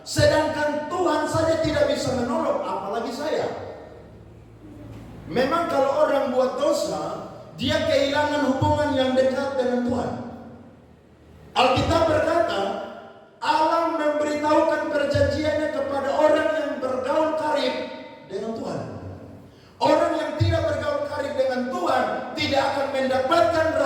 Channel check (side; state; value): both; identical; correlation 1.00